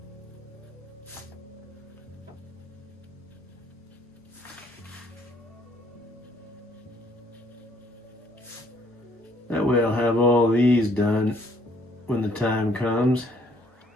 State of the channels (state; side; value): normal; both; correlation 0.65